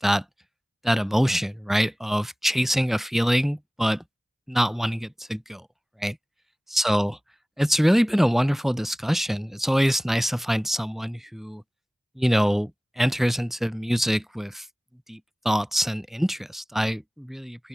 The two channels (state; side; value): normal; both; correlation 0.98